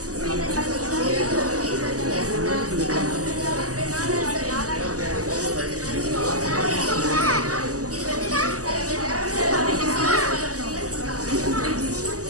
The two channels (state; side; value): late; left; 0.67 ms